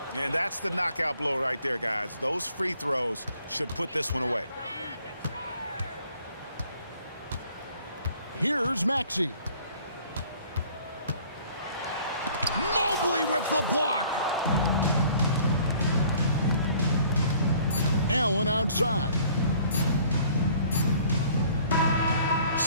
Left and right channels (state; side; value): inverted; both; correlation -0.56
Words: And that's the knockout blow right there, guys. Those free throws should put this one away. Here's Maxey. Mobley with the block. Allen outside.